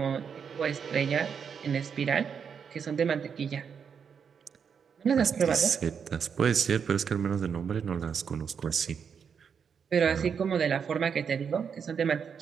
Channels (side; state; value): left; quieter; 6.8 dB